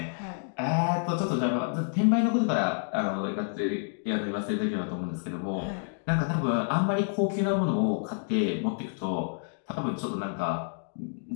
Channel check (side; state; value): right; silent; digital silence